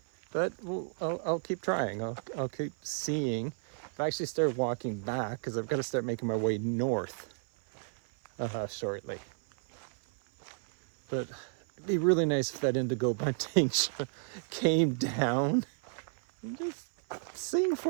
But I'll keep trying. I'll keep seeing. I've actually started walking back because I've got to start making my way north shortly. But It'd be really nice if that indigo bunting came down and just sing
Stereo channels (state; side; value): silent; left; 56 dB below the other